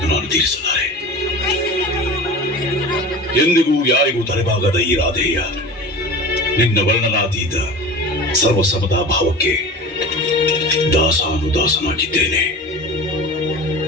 ನಾನು ತೀರಿಸಲಾರೆ. ಎಂದಿಗೂ ಯಾರಿಗೂ ತಲೆಬಾಗದ ಈ ರಾಧೇಯ ನಿನ್ನ ವರ್ಣನಾತೀತ ಸರ್ವಸಮದ ಭಾವಕ್ಕೆ ದಾಸಾನುದಾಸನಾಗಿದ್ದೇನೆ.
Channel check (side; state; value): both; normal; correlation 0.34